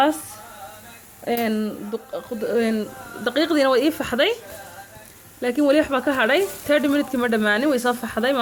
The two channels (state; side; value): identical; both; correlation 1.00